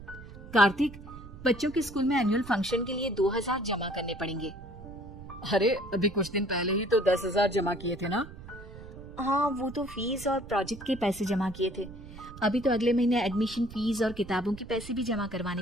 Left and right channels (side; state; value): right; noise; rumble, 15 dB below the sound